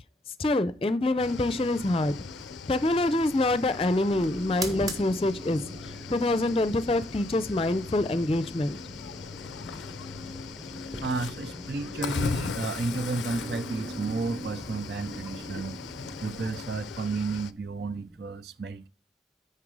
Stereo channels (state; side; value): normal; both; correlation 0.70